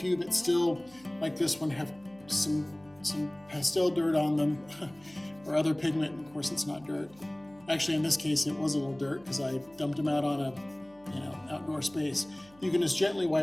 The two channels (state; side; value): noise; right; hum, 27 dB below the sound